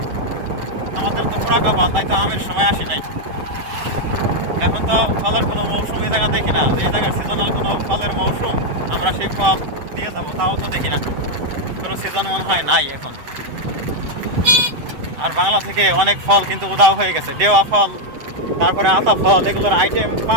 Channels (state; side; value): late; left; 7.8 ms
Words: আমাদের তো পোড়া কপাল, তাই তো আমের সময় আসি নাই। এখন তো ফলের কোনো মৌসুম এই জায়গা দেখি না, যে জায়গায় সিজনাল কোনো ফলের মৌসুম আমরা সেই ফল দিয়ে যাবো তাও তো দেখি না, কোনো সিজন মনে হয় নাই এখন। আর বাংলা থেকে অনেক ফল কিন্তু উধাও হয়ে গেছে। দেওয়া ফল তারপরে আতা ফল, এগুলোর আইটেম